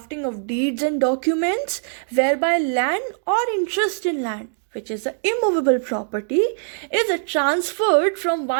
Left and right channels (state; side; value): silent; left; digital silence